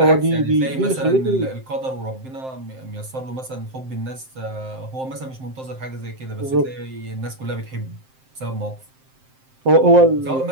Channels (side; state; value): left; late; 7.6 ms